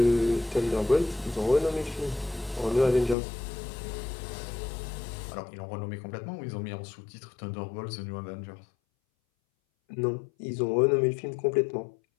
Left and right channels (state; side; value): drops out; right; at 3.2 s